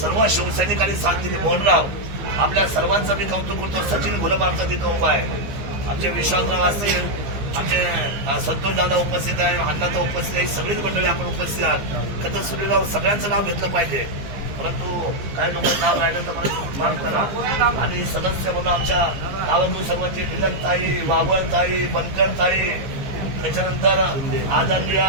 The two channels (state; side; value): late; left; 15 ms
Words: शिवसैनिकांनी साथ दिली, मोहनराव, आपल्या सर्वांचं मी कौतुक करतो. सचिन गुलाब आमचा तिथं उभा आहे, आमचे विश्वासराव असतील, आमचे संतोष दादा उपस्थित आहे, अण्णाचा उपस्थित आहे, सगळीच मंडळी आपण उपस्थित आहात. तर सुनीलराव सगळ्यांचं नाव घेतलं पाहिजे, परंतु काही लोकांचं नाव राहिलं तर मला माफ करा. आणि सदस्य म्हणून आमच्या गावातून सर्वांची मिलनताई, वावळताई, बनकरताई, त्याच्यानंतर आदरणीय